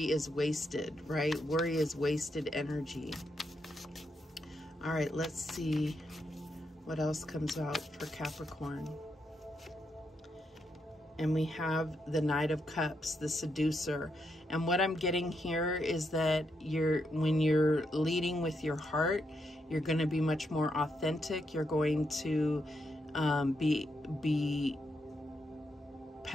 is wasted, right? Worry is wasted energy. All right, let's see what else comes out for Capricorn. And we have the Knight of Cups, the seducer. And what I'm getting here is that when you're leading with your heart, you're going to be much more authentic. You're going to be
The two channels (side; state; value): both; normal; correlation 0.81